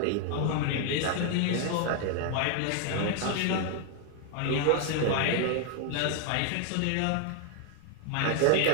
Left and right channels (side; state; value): both; different; correlation 0.00